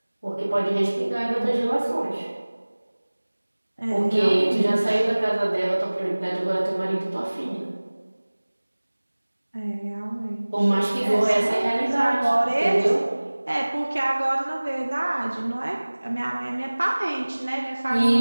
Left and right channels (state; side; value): inverted; both; correlation -1.00